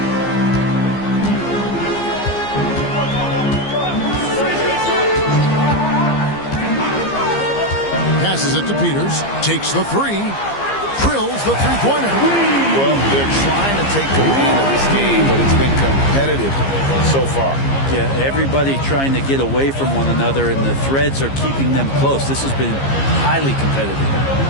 Passes it to Peters. Takes the three. Drills the three-pointer. Well, they're trying to take command of this game, but it's been competitive so far. Yeah, everybody trying to get away from one another, and the threads are keeping them close. This has been highly competitive.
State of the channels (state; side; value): late; right; 15 ms